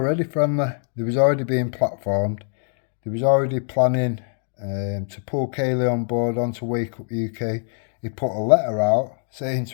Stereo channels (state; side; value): silent; right; 57 dB below the other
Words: friendly. They was already being platformed. They was already planning to pull Kaylee on board onto Wake Up UK. He put a letter out saying